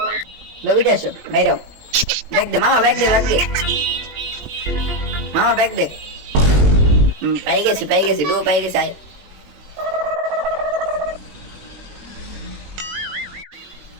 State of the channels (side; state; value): left; late; 20 ms